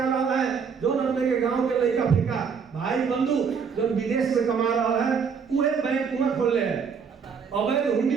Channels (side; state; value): left; quieter; 6.2 dB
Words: रहा है, जो अपने के गांव के लड़का फिका भाई बंधु जो विदेश में कमा रहा है वह बैंक वहां खोल ले है, अवैध